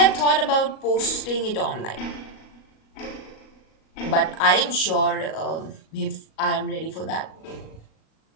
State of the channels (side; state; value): right; late; 37 ms